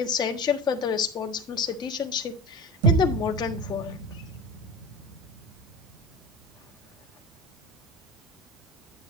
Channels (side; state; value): both; normal; correlation 0.32